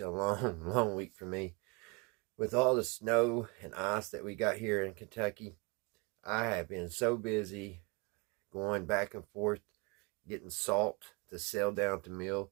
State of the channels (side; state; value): left; quieter; 29.7 dB